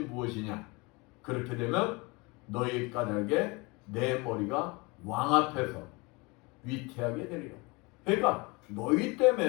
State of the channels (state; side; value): quieter; right; 26.6 dB